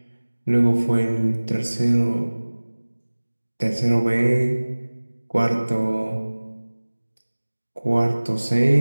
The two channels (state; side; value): inverted; both; correlation -1.00